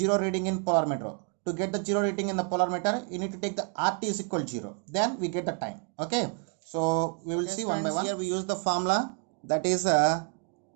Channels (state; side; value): quieter; left; 38.5 dB